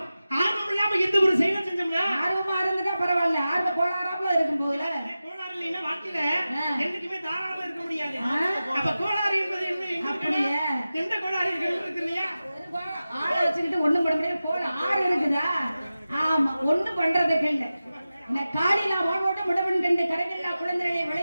இல்லாம எந்த ஒரு செயலை செஞ்சோம்னா ஆர்வமா இருந்துட்டா பரவாயில்ல. ஆர்வ கோளாறாப்புல இருக்கும் போதுல கோளாறு இல்லைன்னா வாழ்க்கையில என்னைக்குமே தாராளமா இருக்க முடியாது. அப்ப கோளாறு என்பது என்ன? எந்த கோளாறு இருக்கு இல்லையா? ஆளை வச்சுக்கிட்டு ஒண்ணும் பண்ண முடியாது. ஆறு இருக்குதா? ஆமா, ஒண்ணும் பண்றதுக்கு இல்ல. இந்த காலிலா ஓடோட முடவன் கண்டு கரையில்லா குழந்தைகளை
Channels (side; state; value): both; inverted; correlation -0.94